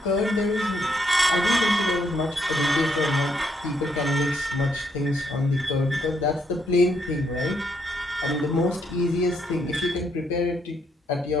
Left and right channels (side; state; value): both; normal; correlation 0.74